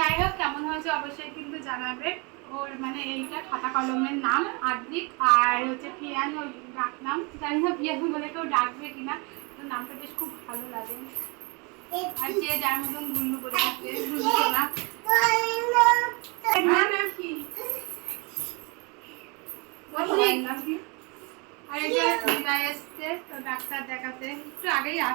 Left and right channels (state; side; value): quieter; left; 30.2 dB